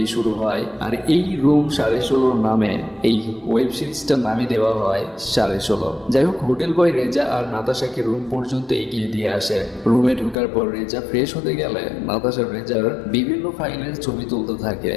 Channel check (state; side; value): drops out; right; at 10.4 s